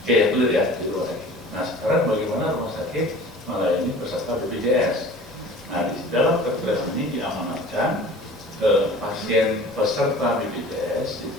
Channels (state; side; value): normal; both; correlation 0.44